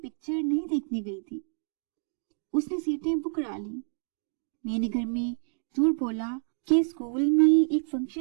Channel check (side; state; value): left; silent; 59 dB below the other